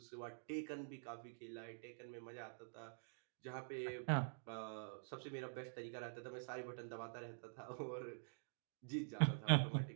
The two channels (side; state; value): left; silent; digital silence